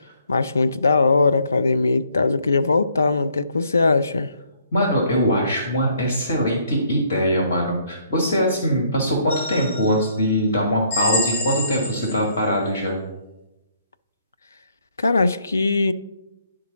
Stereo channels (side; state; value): both; inverted; correlation -0.67